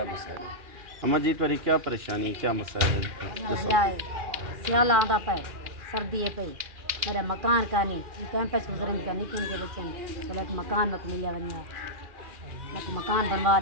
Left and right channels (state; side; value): late; left; 2.4 ms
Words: مسائل ہیں۔ اما جی تمہاری کیا پریشانی، کیا مسائل ہیں؟ سیال آتا پہ سردی پہ میرا مکان کا نہیں کیمپس گزرن کا نکن کے بچن چلو ایک مکان میں ملیا ونیا ایک مکان بنوا